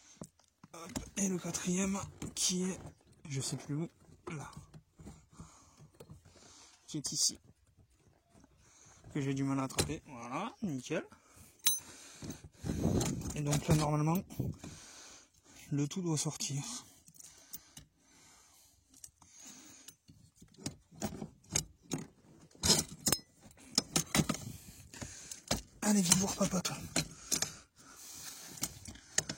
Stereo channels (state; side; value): identical; both; correlation 1.00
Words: Et le 4e qui est, je sais plus où, là, qui est ici, que j'ai du mal à attraper. Voilà, nickel. Et donc là, normalement, le tout doit sortir. Allez, viens voir papa, toi.